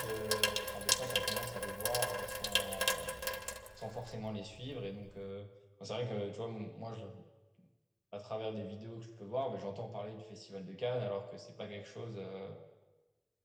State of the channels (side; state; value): both; identical; correlation 1.00